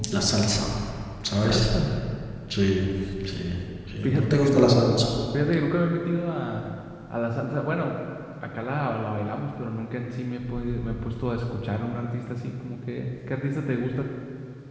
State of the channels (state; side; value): identical; both; correlation 1.00